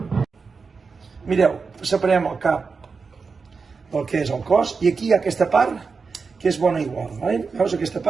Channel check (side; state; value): left; quieter; 4.9 dB